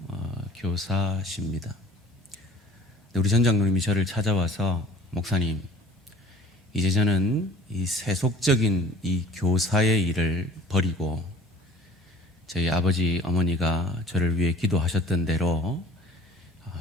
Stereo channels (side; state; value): both; normal; correlation 0.48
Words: 교사십니다. 우리 전 장로님이 저를 찾아와서 목사님, 이제 저는 이 세속적인 이 교사의 일을 버리고 저희 아버지 어머니가 저를 위해 기도하셨던 대로